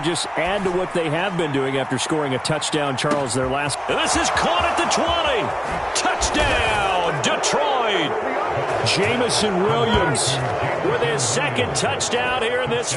just add to what they have been doing after scoring a touchdown, Charles, their last. This is caught at the 20. Touchdown, Detroit. Jamison Williams with his 2nd touchdown here in this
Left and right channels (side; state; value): both; identical; correlation 1.00